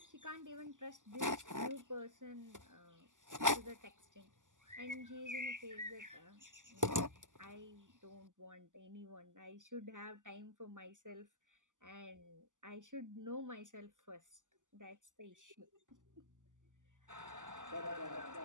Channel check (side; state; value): left; late; 0.87 ms